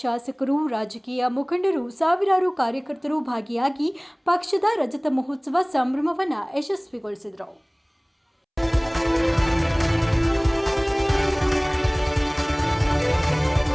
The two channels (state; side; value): identical; both; correlation 1.00